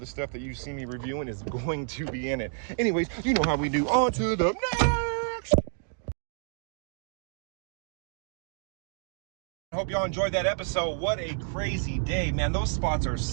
stuff that you see me reviewing is going to be in it. Anyways, you know how we do. On to the next. hope y'all enjoyed that episode. What a crazy day, man. Those spots are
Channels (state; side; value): silent; left; digital silence